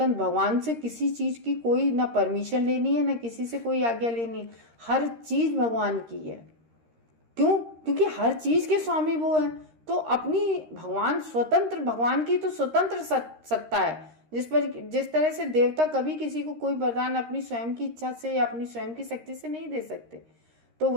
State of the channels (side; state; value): left; late; 13 ms